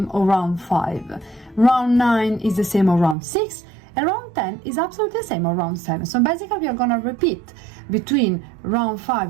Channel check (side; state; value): left; drops out; at 3.2 s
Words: of round 5, round 9 is the same of round 6, and round 10 is absolutely the same of round 7. So basically we are gonna repeat between round